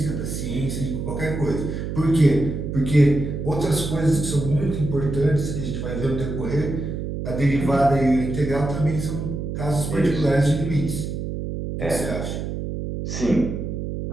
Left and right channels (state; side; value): noise; right; hum, 5 dB below the sound